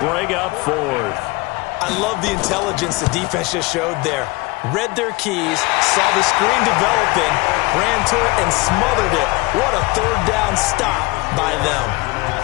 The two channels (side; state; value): right; quieter; 23.9 dB